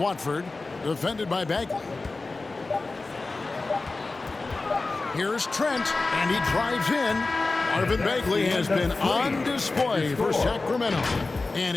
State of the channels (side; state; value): right; quieter; 3.5 dB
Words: defended by Bagley. Here's Trent, and he drives in. Marvin Bagley has been on display for Sacramento,